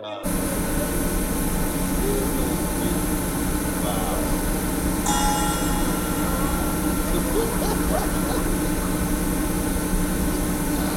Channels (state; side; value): identical; both; correlation 1.00